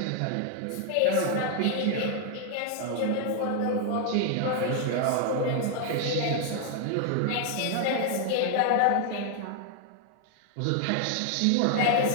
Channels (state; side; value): different; both; correlation 0.00